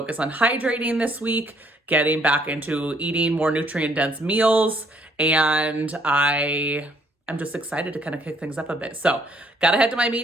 on hydrating this week, getting back into eating more nutrient-dense meals, and I'm just excited to kind of kick things up a bit. So gotta head to my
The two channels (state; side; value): normal; both; correlation 0.66